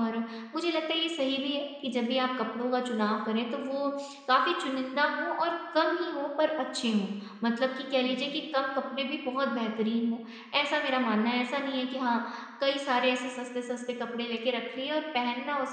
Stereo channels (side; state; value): both; identical; correlation 1.00